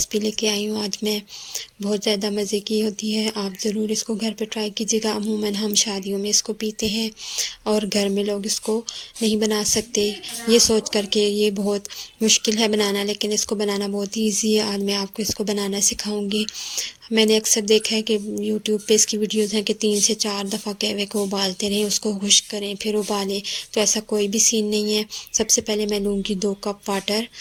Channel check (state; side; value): identical; both; correlation 1.00